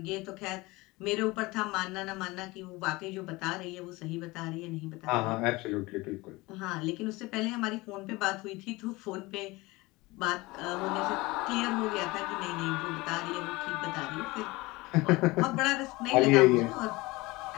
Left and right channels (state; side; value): quieter; right; 22.0 dB